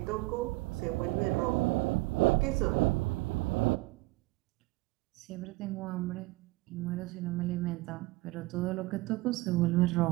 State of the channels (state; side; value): quieter; left; 21.5 dB